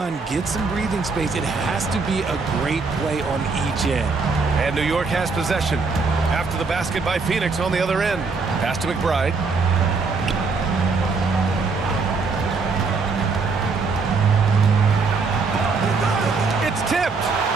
get some breathing space, it has to be a great play on each end. And New York has possession. After the basket by Phoenix on the other end. Pass to McBride. It's tipped.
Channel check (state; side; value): quieter; left; 4.4 dB